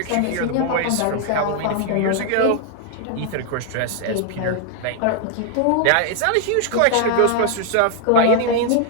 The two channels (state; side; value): different; both; correlation 0.00